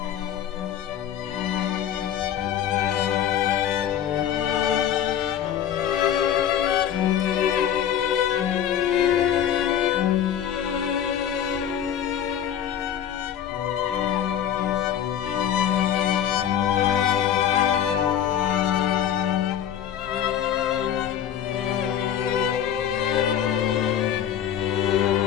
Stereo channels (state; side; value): quieter; right; 9.8 dB